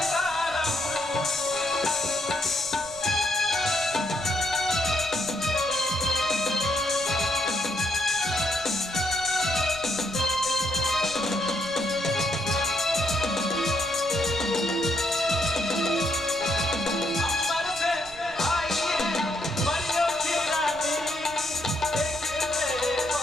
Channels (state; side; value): noise; right; rumble, 19 dB below the sound